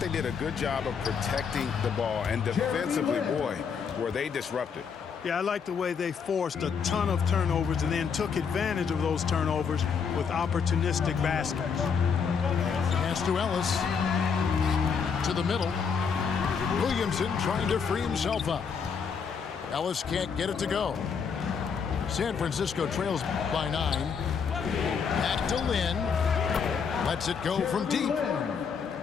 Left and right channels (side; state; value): right; quieter; 6.3 dB